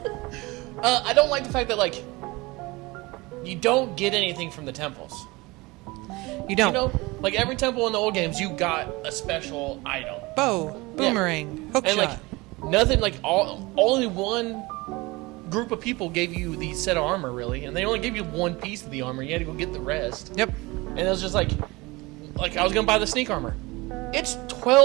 I don't like the fact that, like, you don't get anything from the temples. You don't. You know, like every temple in the old games, you got a special item. Bow, boomerang, hook And shot. like nothing, like only one group of people gave you the set of armor, really, and they only gave you one piece of the armor. You had to go get the rest. Yep. And it was just like I was gonna buy the sneak armor. It's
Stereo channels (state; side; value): quieter; left; 22.9 dB